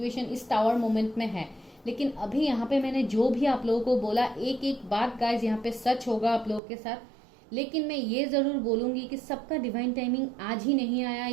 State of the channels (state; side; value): drops out; left; at 6.6 s